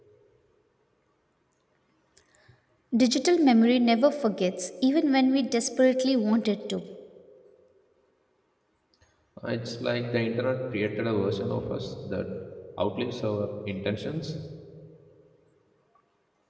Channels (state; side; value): identical; both; correlation 1.00